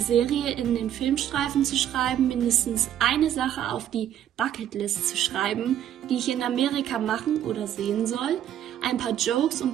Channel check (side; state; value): left; quieter; 10.6 dB